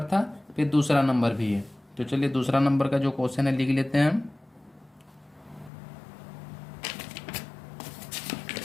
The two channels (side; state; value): right; drops out; at 5.7 s